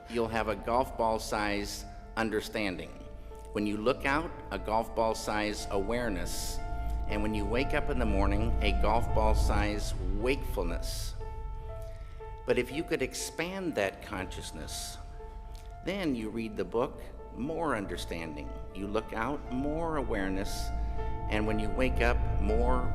you'll have a golf ball-sized understanding. When you look out, a golf ball-sized awareness. And when you wake up in the morning, a golf ball-sized wakefulness. But if you could expand that consciousness, then you read the book, more understanding. You look out, more awareness. And when you wake up, more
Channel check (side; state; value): both; identical; correlation 1.00